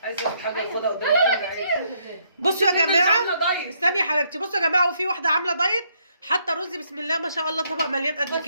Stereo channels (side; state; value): both; inverted; correlation -0.72